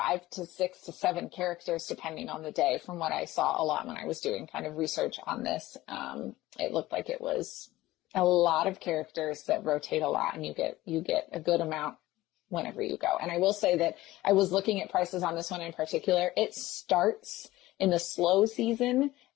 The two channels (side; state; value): right; quieter; 17.1 dB